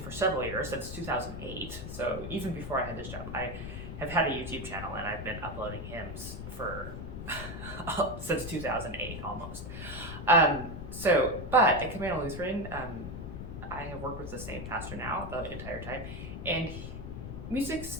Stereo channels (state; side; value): noise; left; rumble, 7 dB below the sound